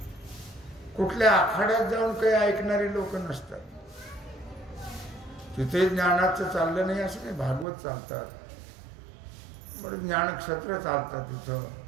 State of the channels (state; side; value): drops out; left; at 7.7 s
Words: कुठल्या आखाड्यात जाऊन काही ऐकणारे लोक नसतात. तिथे ज्ञानाचं चाललं नाही असं नाही, भागवत चालतात, बरं ज्ञानक्षेत्र चालतात तिथं.